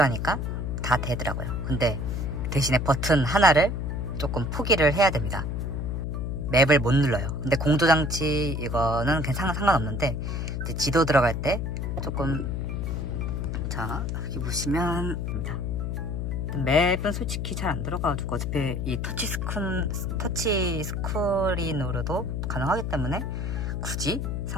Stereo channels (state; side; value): noise; left; hum, 2 dB below the sound